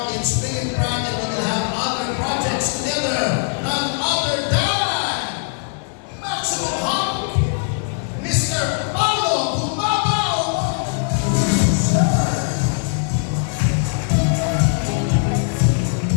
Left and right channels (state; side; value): silent; right; 60 dB below the other